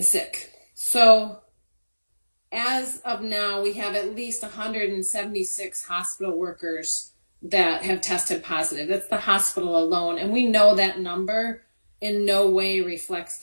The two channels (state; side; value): inverted; both; correlation -1.00